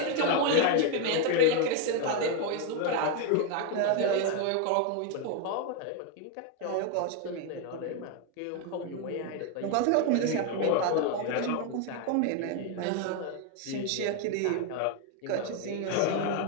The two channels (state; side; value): different; both; correlation 0.01